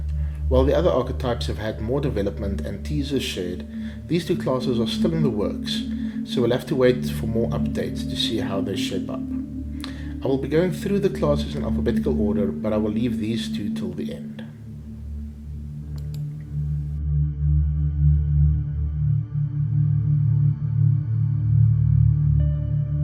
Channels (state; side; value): identical; both; correlation 1.00